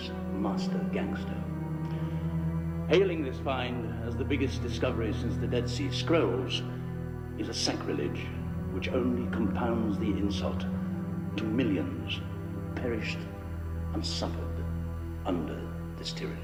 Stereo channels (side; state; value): both; identical; correlation 1.00